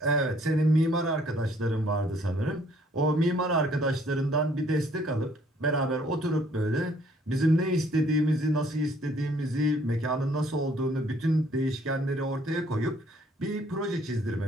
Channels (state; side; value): normal; both; correlation 0.62